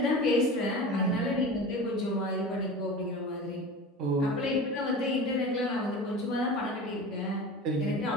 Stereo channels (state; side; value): normal; both; correlation 0.33